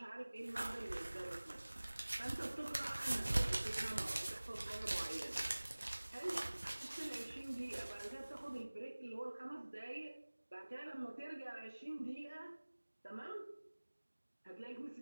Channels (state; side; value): inverted; both; correlation -1.00